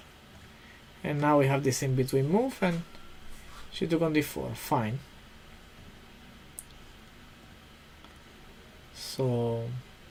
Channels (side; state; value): both; identical; correlation 1.00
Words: and now we have this in between move, and she took on d4, fine. So